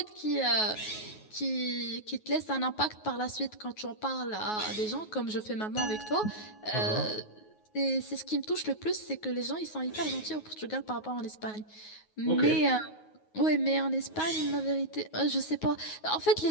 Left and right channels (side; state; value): right; late; 9.4 ms